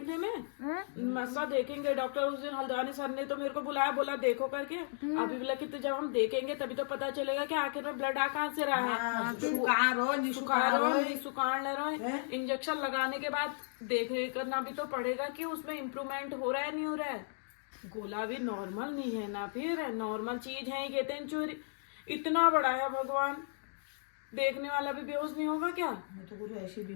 में। मस्सा देखेंगे, डॉक्टर उस दिन हल्द्वानी सर ने तो मेरे को बुलाया, बोला देखो करके। अभी बोला कि तो जब हम देखेंगे तभी तो पता चलेगा कि आखिर में ब्लड आ कहाँ से रहा है। सुखाड़ ले रहा है। इंजेक्शन लगाने के बाद देख करना भी तो पड़ेगा कि उसमें इम्प्रूवमेंट हो रहा है नहीं हो रहा है। गोला भी नॉर्मल नहीं है ना, फिर नॉर्मल चीज है ये चोरी इतना बड़ा है, भगवान देखने वाला भी बेहोश नहीं होगा क्या। मैं तो कुछ ऐसी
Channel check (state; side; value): silent; right; digital silence